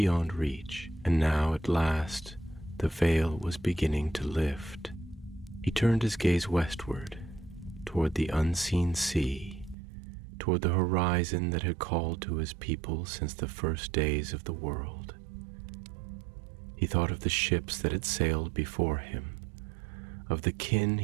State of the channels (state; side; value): drops out; left; at 9.8 s